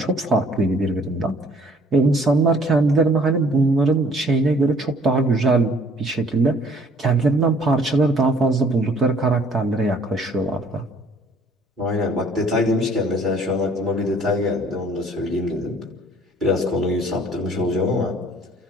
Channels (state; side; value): normal; both; correlation 0.57